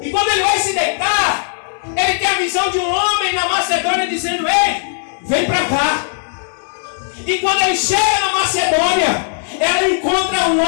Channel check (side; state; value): right; silent; digital silence